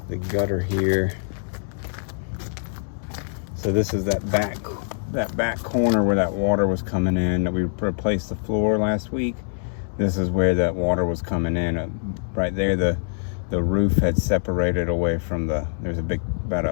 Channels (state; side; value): silent; right; digital silence